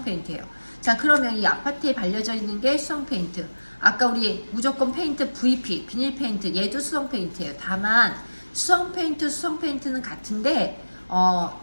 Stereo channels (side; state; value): both; inverted; correlation -1.00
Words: 페인트예요. 자, 그러면 이 아파트에 발려져 있는 게 수성 페인트. 아까 우리 무조건 페인트 VP, 비닐 페인트, 얘도 수성 페인트예요. 다만 수성 페인트는 같은데